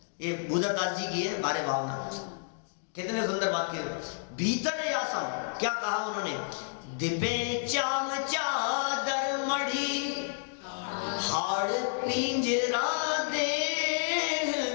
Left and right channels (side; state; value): right; silent; digital silence